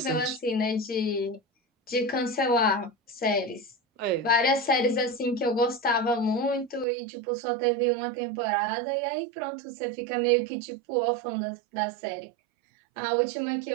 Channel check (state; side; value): drops out; left; at 6.9 s